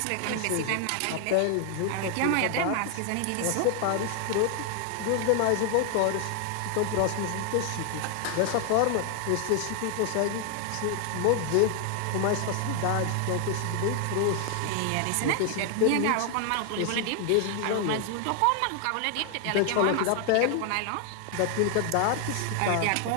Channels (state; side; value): different; both; correlation 0.00